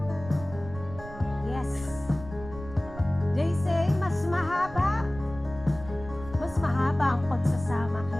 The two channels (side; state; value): right; noise; rumble, 14 dB below the sound